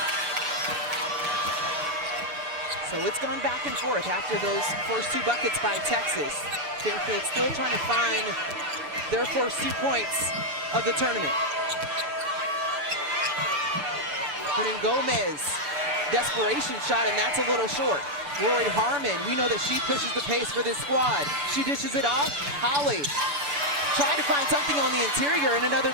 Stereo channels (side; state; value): left; late; 7.0 ms